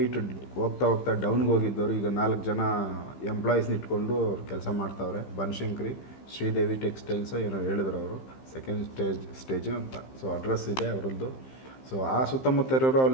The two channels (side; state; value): right; late; 15 ms